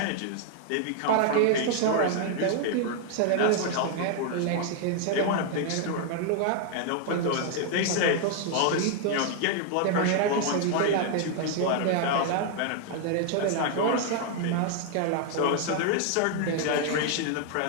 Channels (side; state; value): both; different; correlation 0.00